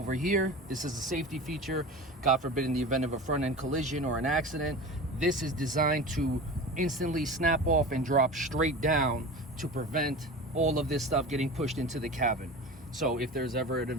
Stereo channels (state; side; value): normal; both; correlation 0.32